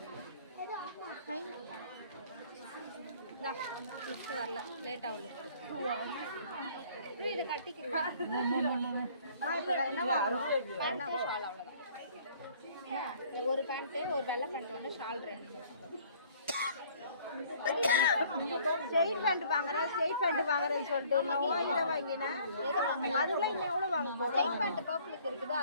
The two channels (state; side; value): inverted; both; correlation -0.56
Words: வரல, late ஆகல. இதை கட்டிக்கிறேன். என்ன வாங்கணும்? என்ன ஷால்? அவ்வளோதான். ஒரு பேண்ட்டு, ஒரு வெள்ளை பேண்ட் ஒன்று, ஷால் 2. ஸ்ட்ரெயிட் பேண்ட் வாங்குறேன், ஸ்ட்ரெயிட் பேண்ட் வாங்குறேன்னு சொல்லிட்டு நான் இதை வாங்கினேன். எதை வாங்கினேன்? அதுக்குலாம் இன்னும் எவ்வளோ வாங்க போகிறோம்? ஸ்ட்ரெயிட் பேண்ட் பர்பிளுக்கு இருக்குது,